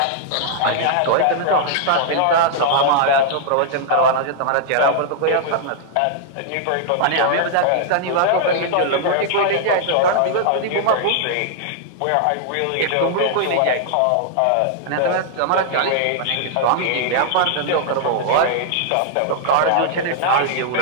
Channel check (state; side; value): different; both; correlation -0.01